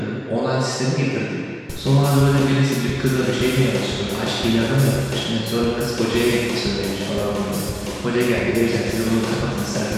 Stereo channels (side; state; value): both; identical; correlation 1.00